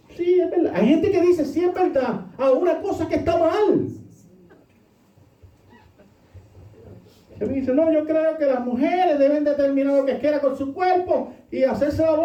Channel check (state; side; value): identical; both; correlation 1.00